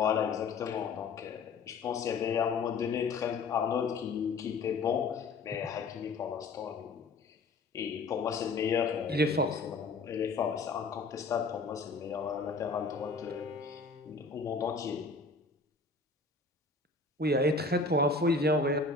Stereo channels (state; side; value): quieter; right; 3.9 dB